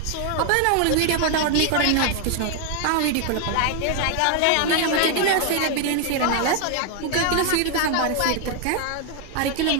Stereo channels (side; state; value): both; different; correlation 0.01